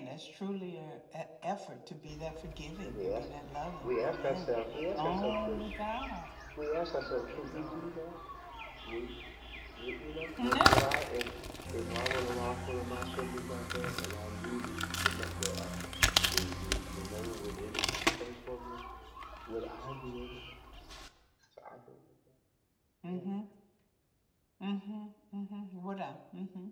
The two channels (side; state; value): both; identical; correlation 1.00